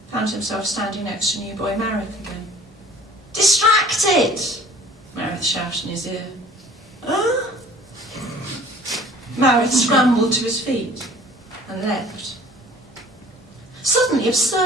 found himself standing next to new boy Marith again. "Distracted!" Marith shouted in his ear. "Huh?" Marith scrambled to his feet and leapt. Suddenly,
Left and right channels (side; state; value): both; normal; correlation 0.51